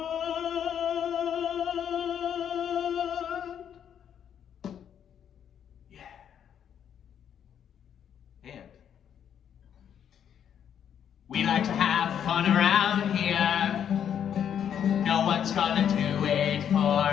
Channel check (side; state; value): right; quieter; 8.9 dB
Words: Yeah. And we like to have fun around here. No one's gonna do it for